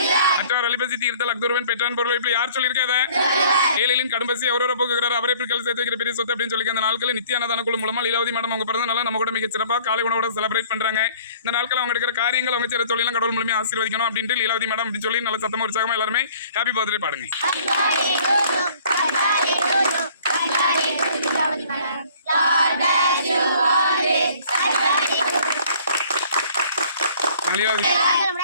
மற்றார் அலிபசி தீர்த்தல் அக்துருவன் பெற்றான் பொருள். இப்படி யார் சொல்லியிருக்காத? ஏழைகளின் கடும்பசி அவரோட போக்குகிறார், அவரை பிற்கால சேர்த்து வைக்கிற பெரிய சொத்து அப்படின்னு சொல்லி அந்த நாட்களில் நித்திய அன்னதான குழு மூலமா லீலாவதி மேடம் அவங்க பிறந்த நாளை நம்ம கூட மிக சிறப்பா காலை உணவோட செலிப்ரேட் பண்றாங்க. இந்த நாட்கள் அவங்க எடுக்கிற காரியங்கள் அவங்க செய்யற தொழிலாம் கடவுள் மூலமா ஆசீர்வதிக்கணும் அப்படின்ட்டு லீலாவதி மேடம் அப்படின்னு சொல்லி நல்ல சத்தமா உற்சாகமா எல்லாருமே ஹாப்பி பர்த்டே பாடுங்க.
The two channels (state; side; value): inverted; both; correlation -0.54